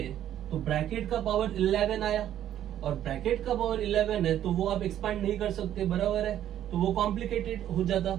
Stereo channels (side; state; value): left; quieter; 11.3 dB